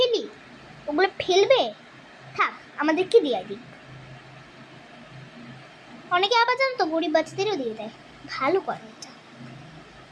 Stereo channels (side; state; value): both; identical; correlation 1.00